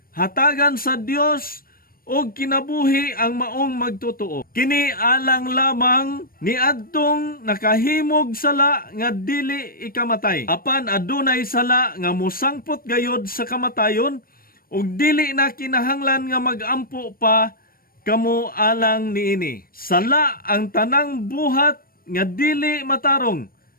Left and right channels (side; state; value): right; late; 0.42 ms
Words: Hatagan sa Dios og kinabuhi ang maong magtotoo. Kini alang lamang ni adtong nakahimog sala nga dili ikamatay. Apan adunay sala nga musangpot gayod sa kamatayon, ug dili na kinahanglan nga magampo pa kamo alang niini. Sala ang tanang buhat nga dili matarong,